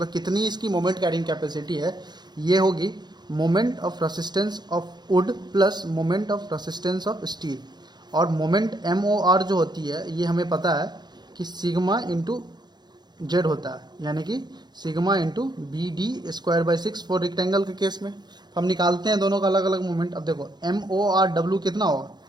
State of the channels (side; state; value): left; late; 0.21 ms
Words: कितनी इसकी मोमेंट कैरिंग कैपेसिटी है, ये होगी moment of resistance of would plus moment of resistance of steel. और मोमेंट MOR जो होती है ये हमें पता है कि सिग्मा इंटू जेड होता है, यानी कि sigma into BD²/6 for rectangle के केस में। हम निकालते हैं दोनों का अलग अलग मोमेंट। अब देखो MORW कितना होगा?